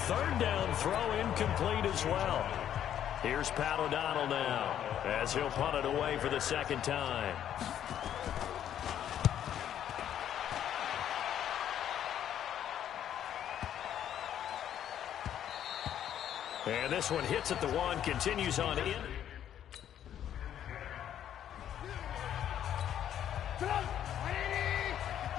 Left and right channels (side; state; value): right; quieter; 10.3 dB